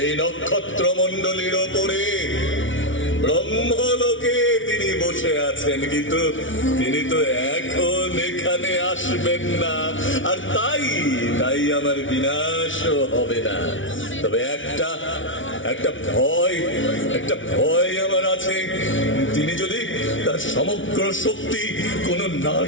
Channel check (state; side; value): late; right; 0.56 ms